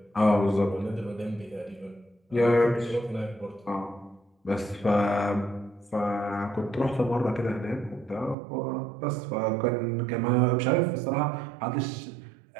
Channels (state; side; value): drops out; left; at 8.3 s